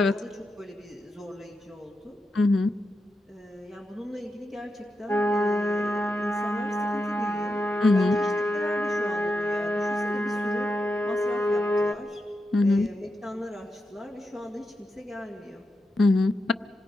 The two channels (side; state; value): both; normal; correlation 0.87